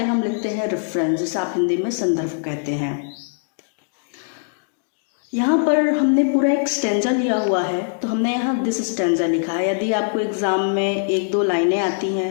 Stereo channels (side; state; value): right; silent; digital silence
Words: हम लिखते हैं रेफरेंस, जिसे आप हिंदी में संदर्भ कहते हैं। यहाँ पर हमने पूरा एक स्टैंजा लिया हुआ है, तो हमने यहाँ दिस स्टैंजा लिखा है। यदि आपको एग्ज़ाम में 1-2 लाइनें आती